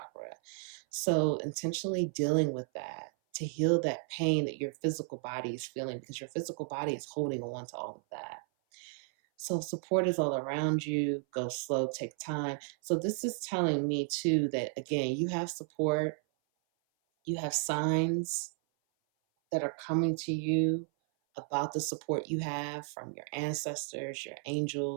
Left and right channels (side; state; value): left; silent; 55 dB below the other